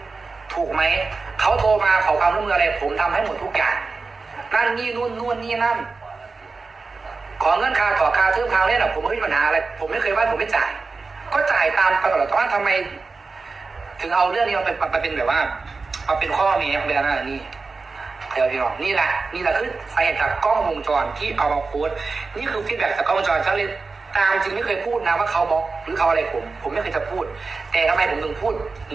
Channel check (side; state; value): left; quieter; 4.1 dB